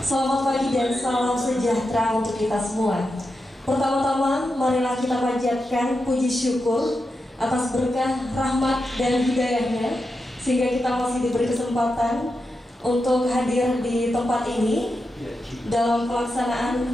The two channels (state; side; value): normal; both; correlation 0.88